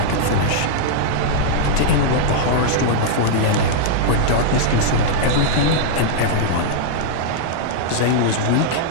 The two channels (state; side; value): different; both; correlation -0.02